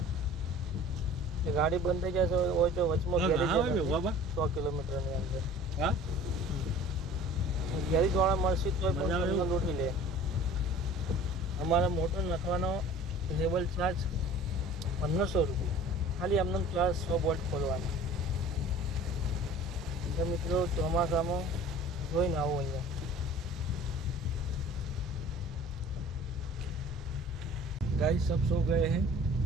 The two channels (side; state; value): both; normal; correlation 0.45